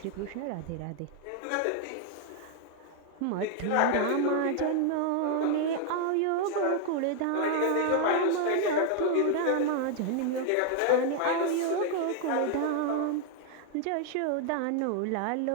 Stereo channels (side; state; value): both; different; correlation 0.00